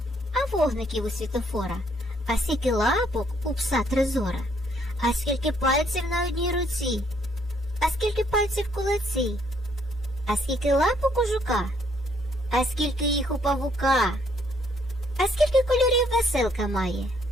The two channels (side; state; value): both; normal; correlation 0.68